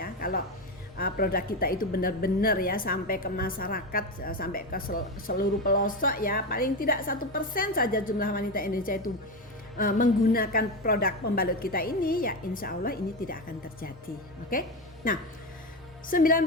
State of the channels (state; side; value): normal; both; correlation 0.16